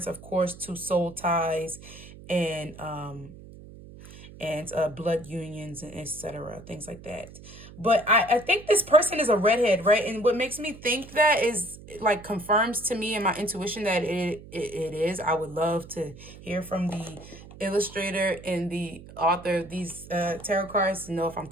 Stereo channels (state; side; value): noise; right; hum, 17 dB below the sound